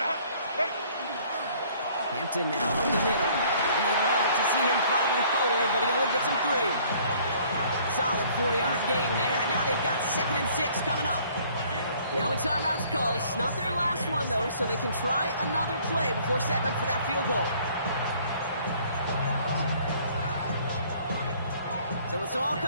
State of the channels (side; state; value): both; inverted; correlation -0.58